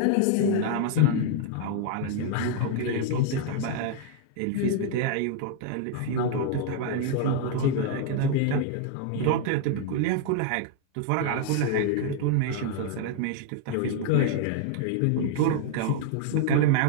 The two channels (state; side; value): different; both; correlation 0.00